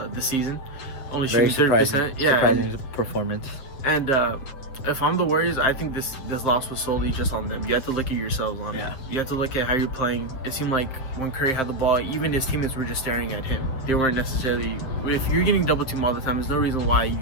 season, only shooting 30%. Yeah, surprising performance. And if I'm the Warriors, I think this loss was solely just on them. You have to look at yourselves on it. You have to look at how you're playing. It seemed like when Curry had the ball, even his teammates were just staring at him. They weren't necessarily. If you're getting double teamed all the time, there's no reason why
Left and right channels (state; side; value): late; right; 7.6 ms